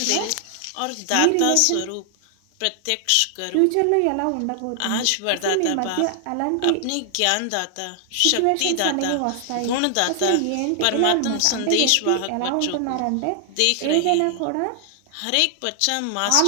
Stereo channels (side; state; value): both; different; correlation 0.00